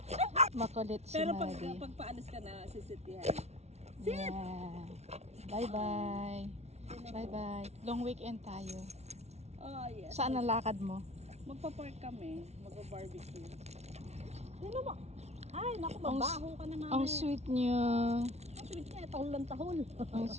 Makulit si Pero Maddie. pag paalis ka na, sisit yan. Yeah. Bye-bye. Bye-bye. Long weekend tayo. Oh, yes. Saan ang lakad mo? Magpa-park kami. Magpa-barbecue. Sino mo? Ay, naku, Ang mabaho ka na namin. Ang sweet niya. Ang sweet niya, tahol lang tahol. Ang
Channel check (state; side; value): late; left; 0.31 ms